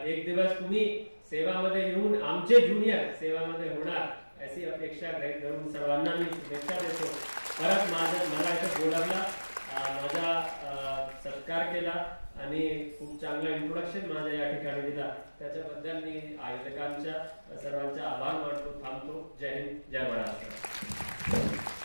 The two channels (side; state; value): both; inverted; correlation -1.00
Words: एक दिवस तुम्ही सेवामध्ये येऊन आमचे ज्युनियर सेवामध्ये होणार अशी अपेक्षा गृहीत धरून सर्वांना मी शुभेच्छा देतो. परत मला इथं बोलावला, माझा सत्कार केला आणि खूप चांगला इंट्रोडक्शन माझ्या या ठिकाणी दिला, त्याच्याबद्दल मी आयोजकांच्या सर्वांचा आभार मानतो. थांबतो. जय हिंद, जय महाराष्ट्र.